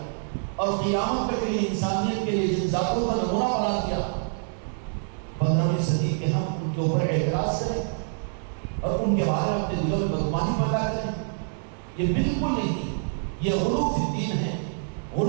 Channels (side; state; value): left; silent; digital silence